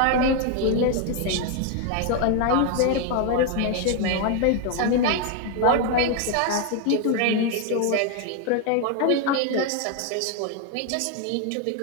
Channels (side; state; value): both; different; correlation 0.01